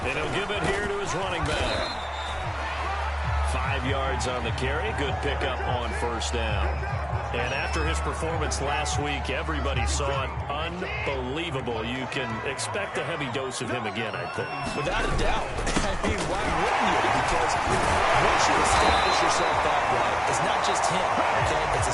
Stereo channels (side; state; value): both; identical; correlation 1.00